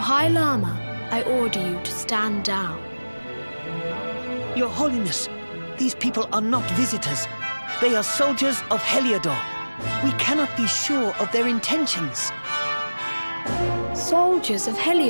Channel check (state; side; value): inverted; both; correlation -1.00